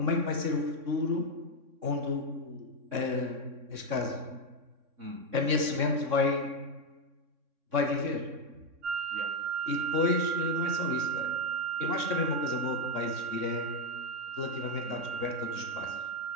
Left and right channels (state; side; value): late; left; 3.6 ms